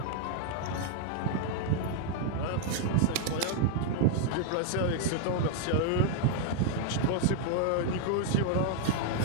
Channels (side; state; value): both; different; correlation 0.00